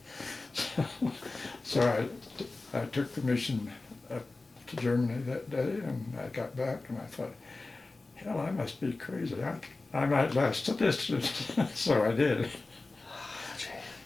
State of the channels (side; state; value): right; quieter; 3.4 dB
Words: So I took the mission up to Germany that day, and I got back and I thought, hell, I must be crazy. I might last the distance. So I did.